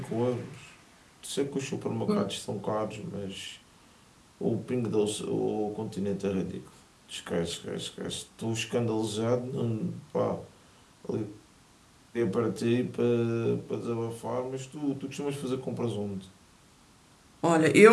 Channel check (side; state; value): both; identical; correlation 1.00